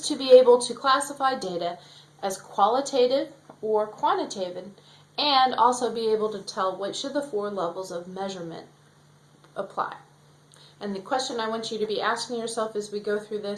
to be able to classify data as qualitative or quantitative, and also be able to tell which of the four levels of measurement apply. And the question I want you to be asking yourself as we go through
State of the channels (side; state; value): both; identical; correlation 1.00